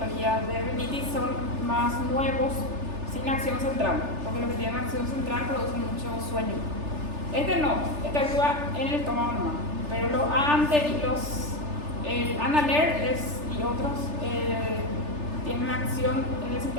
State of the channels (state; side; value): late; left; 3.3 ms